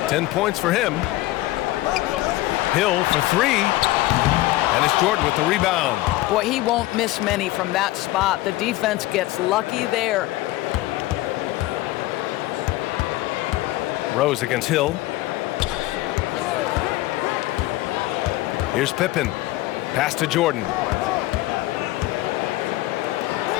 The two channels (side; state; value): right; quieter; 17.5 dB